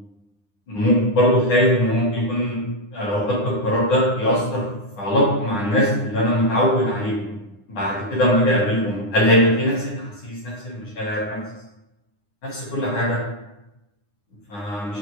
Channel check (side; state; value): right; late; 9.8 ms